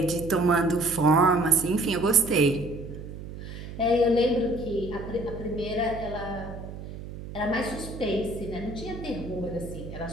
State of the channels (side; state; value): right; noise; hum, 11 dB below the sound